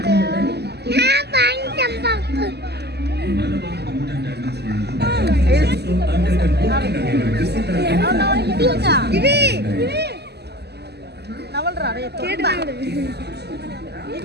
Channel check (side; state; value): left; late; 0.48 ms